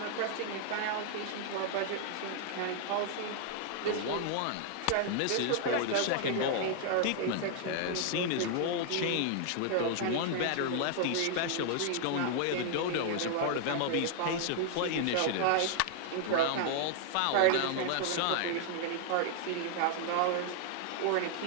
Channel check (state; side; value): different; both; correlation 0.00